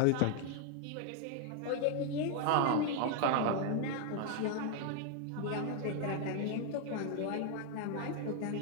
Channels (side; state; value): both; different; correlation 0.00